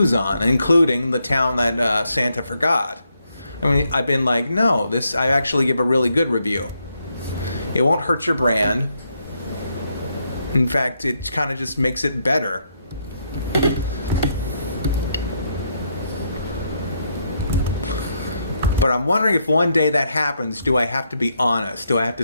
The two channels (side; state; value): both; inverted; correlation -0.77